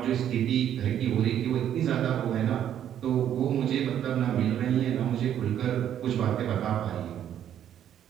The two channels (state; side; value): quieter; left; 10.2 dB